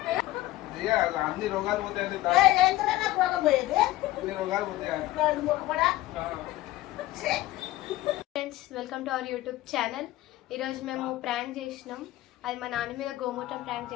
అన్ని రోగాలు పోతాయండి. రోగాలు పోతాయి. Friends, welcome to our YouTube channel. ఈరోజు మేము ప్రాంక్ చేసినాం. అది మా నాన్న మీద గోమూత్రం ప్రాంక్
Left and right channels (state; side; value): quieter; right; 16.5 dB